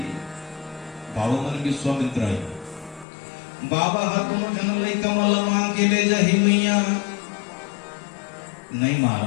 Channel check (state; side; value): drops out; right; at 3.1 s